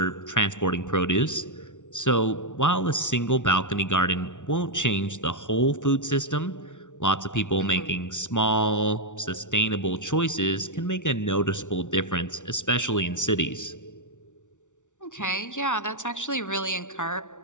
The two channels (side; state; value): right; late; 0.86 ms